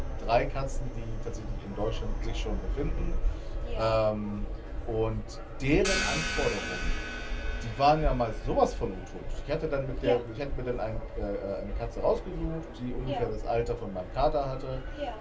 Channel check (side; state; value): both; identical; correlation 1.00